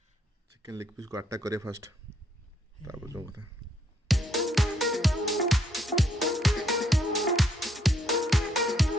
चिकन लेग पीस को अटैक करे फर्स्ट तापर जो बता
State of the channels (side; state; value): both; normal; correlation 0.71